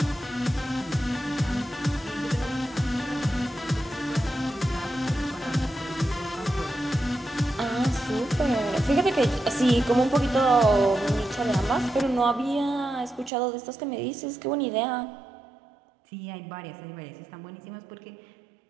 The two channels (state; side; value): drops out; left; at 13.3 s